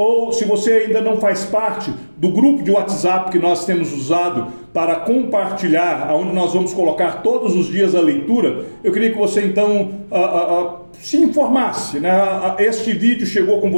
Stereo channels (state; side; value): inverted; both; correlation -1.00